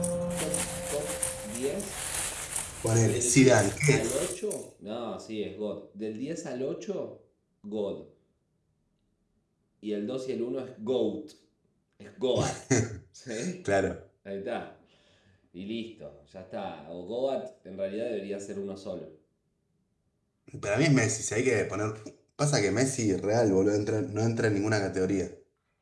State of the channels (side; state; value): both; identical; correlation 1.00